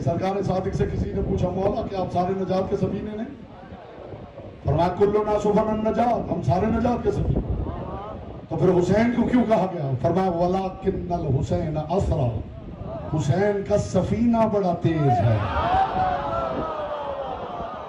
सरकार सादिक से किसी ने पूछा, मौला कि आप सारे नजात के सफीने नहीं? फरमाया कुल्लु नासुफन नजात, हम सारे नजात के सफीने। तो फिर हुसैन को क्यों कहा गया? फरमाया वलाकिन्नल हुसैन असरा, हुसैन का सफीना बड़ा तेज है,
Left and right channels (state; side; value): identical; both; correlation 1.00